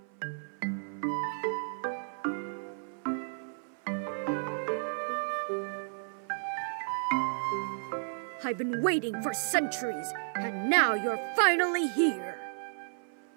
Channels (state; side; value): silent; left; 56 dB below the other